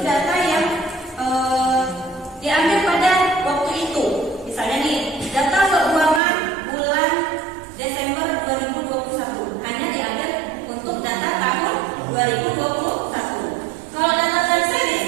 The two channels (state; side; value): drops out; left; at 6.2 s